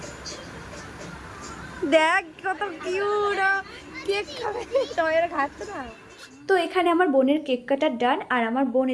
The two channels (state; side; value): identical; both; correlation 1.00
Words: দেখ কত কিউট কেক খাবে, তোমার খাচ্ছে না। তো এখানে আমার বোনের কেক কাটার ডান। আর আমার বোন